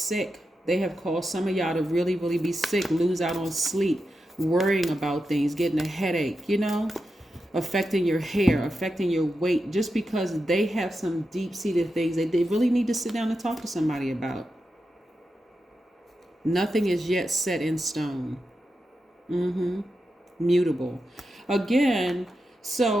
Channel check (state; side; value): normal; both; correlation 0.89